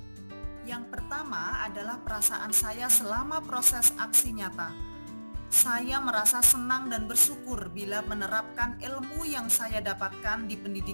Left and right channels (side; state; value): both; inverted; correlation -1.00